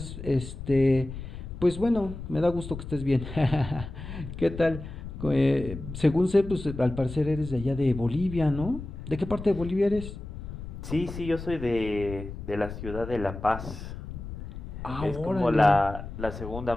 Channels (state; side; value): noise; left; rumble, 10 dB below the sound